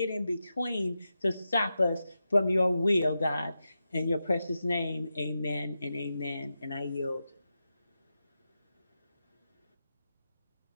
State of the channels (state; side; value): inverted; both; correlation -0.89